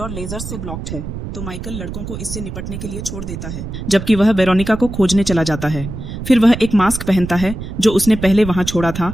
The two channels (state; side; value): noise; right; rumble, 8 dB below the sound